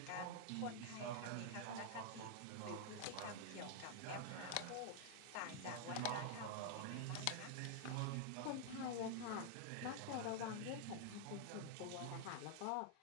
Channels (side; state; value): both; different; correlation -0.01